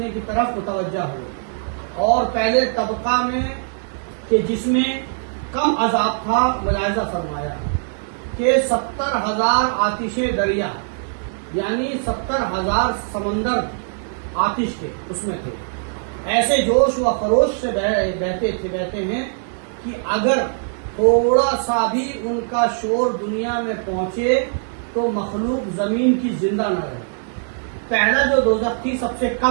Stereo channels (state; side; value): silent; left; digital silence